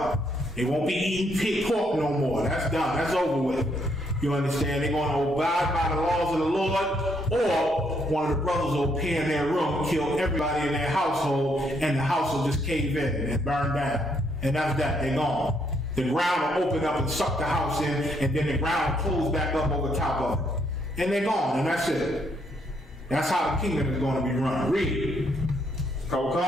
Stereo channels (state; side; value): normal; both; correlation 0.73